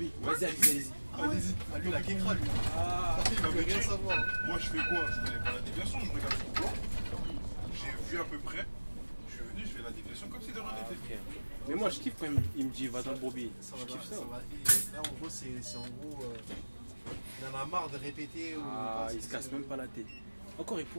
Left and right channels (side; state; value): both; inverted; correlation -1.00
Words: Vas-y, allez-y. Allez-y. Ah lui la kékra lui. Ah, Il veut rien savoir. Hein. Moi je fais quoi? Je connais pas la déviation, je regarde sur le plan. J'ai vu à peu près. Je suis venu, je fais la déviation comme si de rien n'était. ok. Mais moi, je kiffe quand il me dit va dans le broubi. Ça Je va, kiffe ça. ça va. Et là en gros c'est en gros il en a marre de répéter. Ah, il se casse même pas la tête. Encore, il